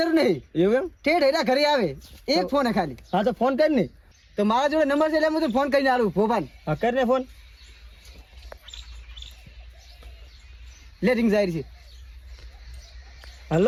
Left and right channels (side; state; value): both; identical; correlation 1.00